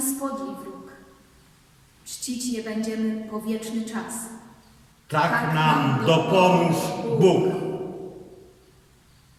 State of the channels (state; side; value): identical; both; correlation 1.00